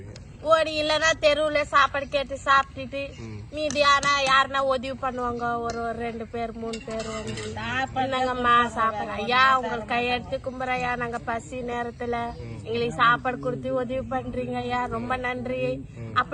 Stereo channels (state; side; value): identical; both; correlation 1.00